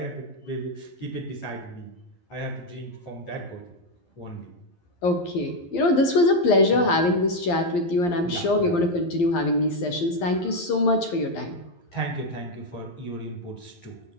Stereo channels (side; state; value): right; late; 11 ms